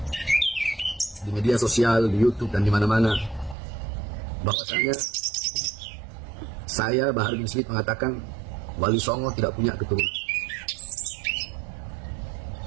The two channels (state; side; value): drops out; left; at 3.6 s